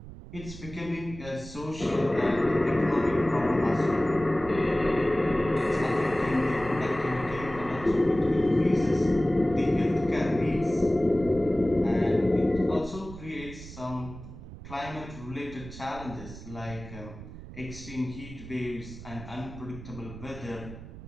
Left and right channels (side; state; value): right; noise; rumble, 14 dB below the sound